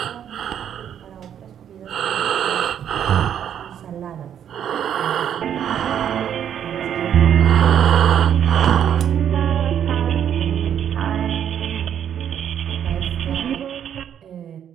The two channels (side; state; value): left; quieter; 9.4 dB